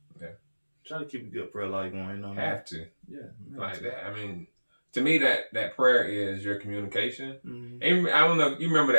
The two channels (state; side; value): inverted; both; correlation -1.00